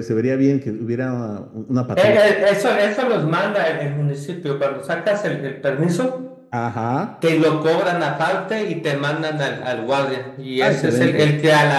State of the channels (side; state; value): both; identical; correlation 1.00